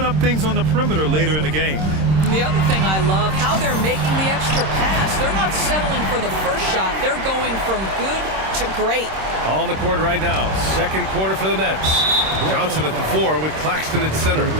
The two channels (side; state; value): left; late; 26 ms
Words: up things on the perimeter later in the game. And the other thing I love, how they're making the extra pass. They're not settling for the first shot. They're going from good to great. On the court right now, second quarter for the Nets. Johnson at the 4 with Claxton at center.